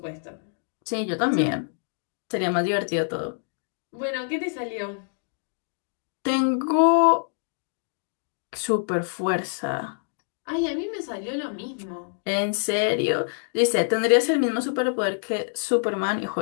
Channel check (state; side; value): silent; right; digital silence